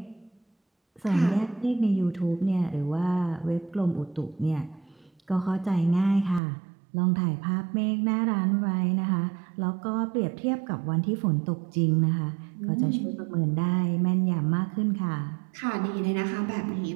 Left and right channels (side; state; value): left; drops out; at 6.4 s